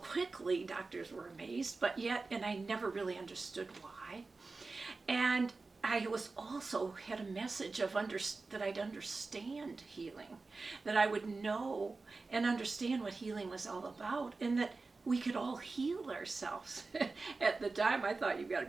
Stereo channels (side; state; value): left; quieter; 3.8 dB